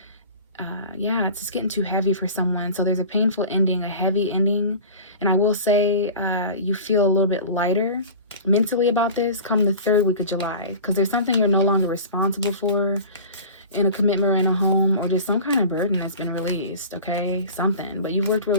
yeah, it's just getting too heavy for someone. So there's a painful ending, a heavy ending. And I will say you feel a little bit lighter mentally about this come the 3rd week of July, because there's something you're no longer responsible for in a commitment or in a home, or just some kind of burden that's been released, okay? Something. But you've worked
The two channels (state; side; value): inverted; both; correlation -0.37